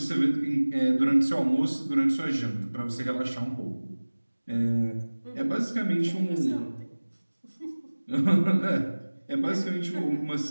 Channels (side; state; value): both; inverted; correlation -1.00